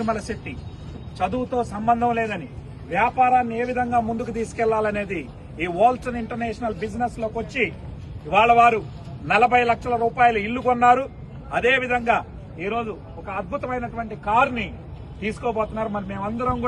శెట్టి చదువుతో సంబంధం లేదని వ్యాపారాన్ని ఏ విధంగా ముందుకు తీసుకెళ్లాలనేది ఈ వాల్టన్ ఇంటర్నేషనల్ బిజినెస్ లోకి వచ్చి ఇవాళ వారు 40 లక్షల రూపాయలు ఇల్లు కొన్నారు. అదేవిధంగా ఈరోజు ఒక అద్భుతమైనటువంటి కారుని తీసుకోబోతున్నారు. మరి మేమందరం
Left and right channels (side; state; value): both; identical; correlation 1.00